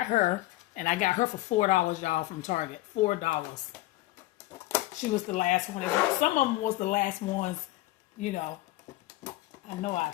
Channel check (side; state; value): right; quieter; 17.8 dB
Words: her. And I got her for $4, y'all, from Target. $4. She was the last one. Some of them was the last ones, you know. I know I